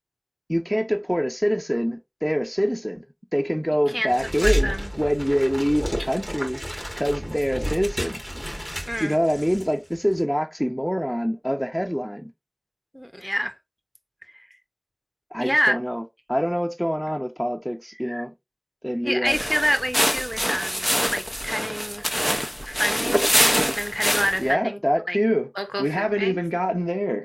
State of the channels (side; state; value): both; identical; correlation 1.00